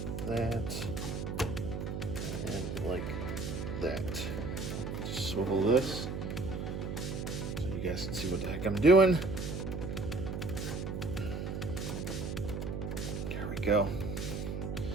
that, and like that. Just swivel this so you guys can see what the heck I'm doing. There we go.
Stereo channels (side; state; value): right; noise; hum, 4 dB below the sound